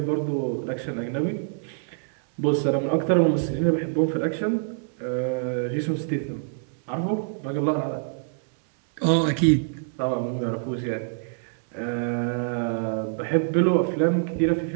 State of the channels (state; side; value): silent; left; 61 dB below the other